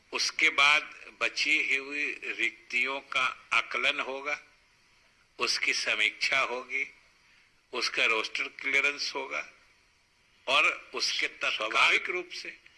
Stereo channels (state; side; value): identical; both; correlation 1.00